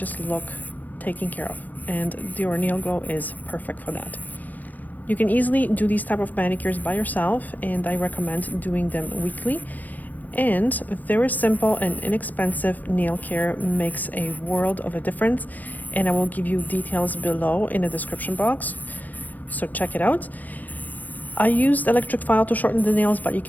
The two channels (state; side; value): late; right; 0.084 ms